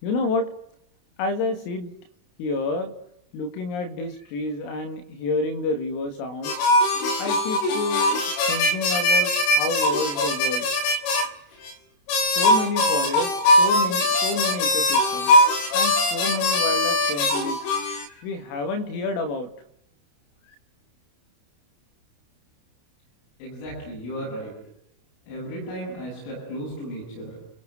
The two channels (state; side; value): late; right; 28 ms